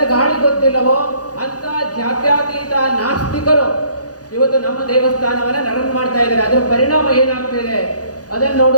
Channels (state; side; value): late; right; 0.68 ms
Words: ಗಾಳಿ ಗೊತ್ತಿಲ್ಲವೋ ಅಂತ ಜಾತ್ಯತೀತ ನಾಸ್ತಿಕರು ಇವತ್ತು ನಮ್ಮ ದೇವಸ್ಥಾನವನ್ನ ರನ್ ಮಾಡ್ತಾ ಇದ್ದಾರೆ. ಅದರ ಪರಿಣಾಮ ಏನಾಗ್ತಿದೆ ಅದನ್ನು